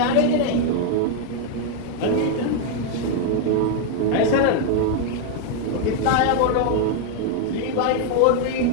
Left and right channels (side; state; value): both; different; correlation 0.00